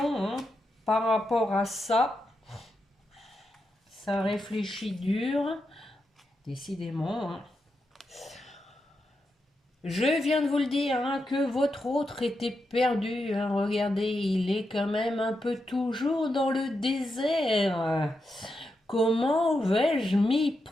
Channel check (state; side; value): normal; both; correlation 0.86